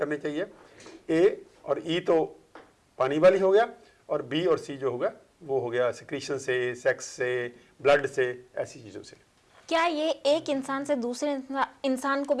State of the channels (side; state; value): both; identical; correlation 1.00